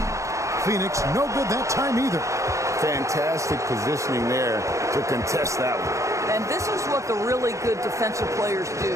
Phoenix, no good that time either. Fantastic positioning there to contest that one. And this is what the really good defensive players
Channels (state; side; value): late; left; 0.15 ms